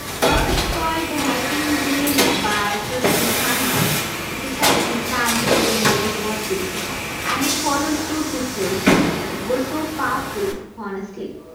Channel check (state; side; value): identical; both; correlation 1.00